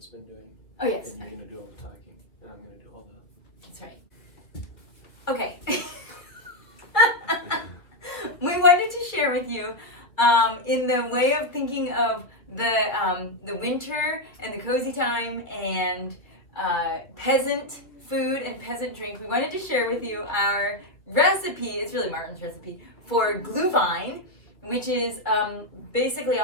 been doing. Oh, yes. And you're going to do all the talking, and I'm going to do all the... That's right. Okay. We wanted to share with you, in the way of thinking of the winter and the cozy time and peasant food and peasant drink, we wanted to share with you our recipe. It's really Martin's recipe for Glühwein, which is basically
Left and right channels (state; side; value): late; right; 2.1 ms